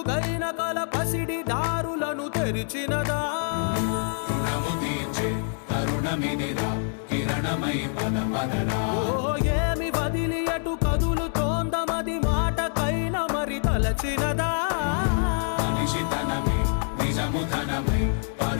కల పసిడి దారులను తెరిచినదా రుణము తీర్చే తరుణమిదిరా కిరణమై పద పదరా ఓ ఏమి వదిలి అటు కదులుతోందమది మాటకైన మరి తలచినదా మనిషితనమే నిజముతనమై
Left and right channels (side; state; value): right; silent; 61 dB below the other